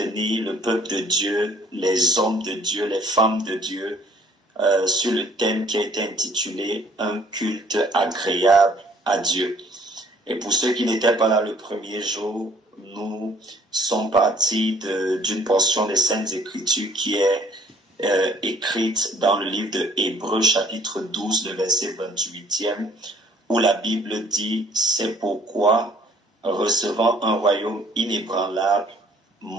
le peuple de Dieu, les hommes de Dieu, les femmes de Dieu, sur le thème qui a été intitulé « Un culte agréable à Dieu ». Et pour ceux qui n'étaient pas là le premier jour, nous sommes partis d'une portion des Saintes Écritures qui est écrite dans le livre de Hébreux chapitre 12, le verset 28e, où la Bible dit « C'est pourquoi, recevant un royaume inébranlable,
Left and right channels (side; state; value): both; normal; correlation 0.58